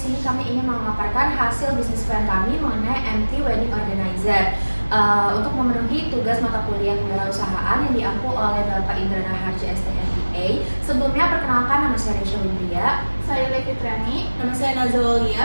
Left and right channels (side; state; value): both; inverted; correlation -1.00